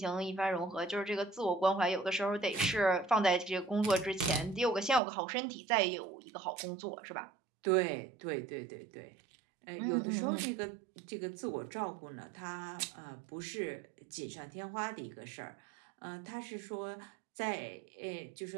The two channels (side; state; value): left; drops out; at 5.0 s